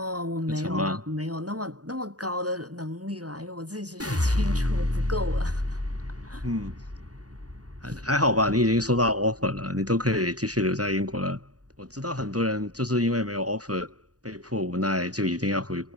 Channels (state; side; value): late; left; 0.68 ms